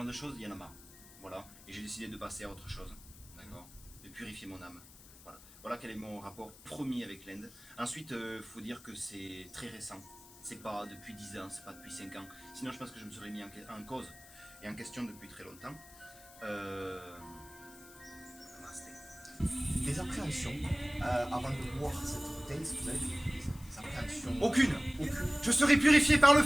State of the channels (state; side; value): noise; left; hiss, 20 dB below the sound